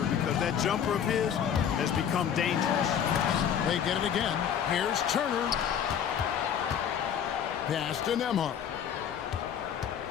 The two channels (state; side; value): quieter; right; 8.6 dB